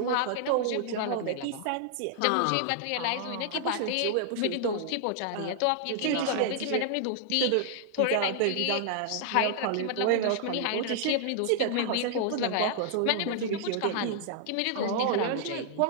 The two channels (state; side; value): different; both; correlation -0.01